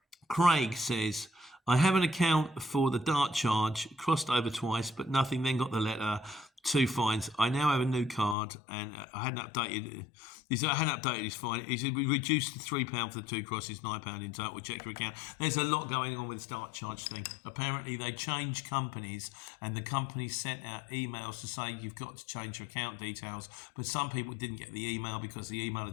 Craig says, I have an account for the dart charge, crossed over twice, but nothing, then got the letter, 2 fines. I now have a new card, and I hadn't updated. I hadn't updated his fine. He said we reduced to £3 for the 2 crosses, £9 in total. Check your account. There's a lot going on with the dart charge thing. Apparently, they changed companies, and the companies sent out emails to say you've got to change your account details. But some people didn't get the email because the email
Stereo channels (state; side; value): drops out; right; at 8.3 s